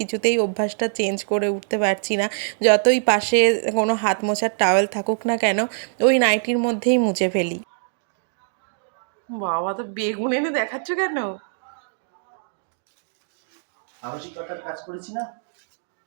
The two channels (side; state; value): left; silent; digital silence